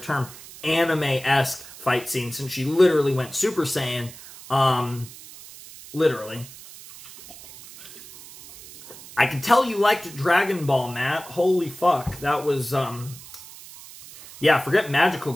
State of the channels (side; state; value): right; noise; hiss, 17 dB below the sound